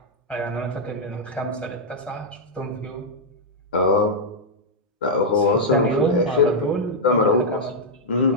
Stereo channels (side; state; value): both; normal; correlation -0.04